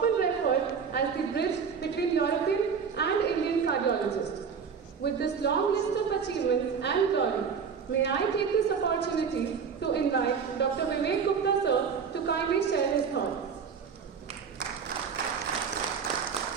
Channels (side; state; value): left; quieter; 6.4 dB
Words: referred as the bridge between European and Indian cardiologists. With this long list of achievements and glory, may I take this opportunity to invite Dr. Vivek Gupta sir to kindly share his thoughts.